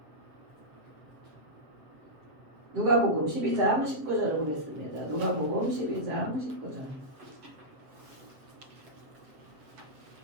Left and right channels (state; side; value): late; left; 7.6 ms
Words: 누가복음 12장 19절을 보겠습니다. 누가복음 12장 19절.